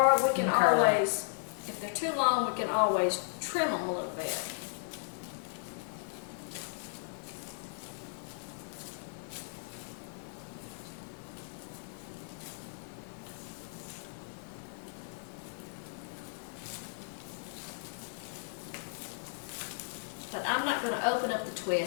we can Curl 'em. always, if they're too long, we can always trim them a little bit. But I'm not going to open up the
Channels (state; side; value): silent; right; 54 dB below the other